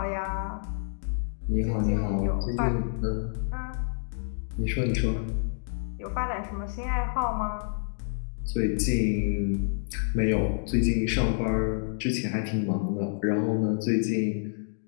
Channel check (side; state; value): right; silent; digital silence